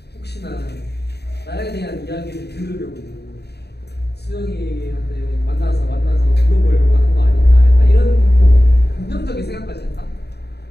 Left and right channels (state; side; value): late; right; 0.48 ms